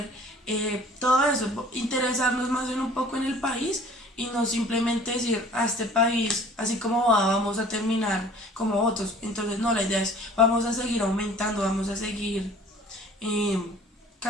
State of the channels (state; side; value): normal; both; correlation 0.49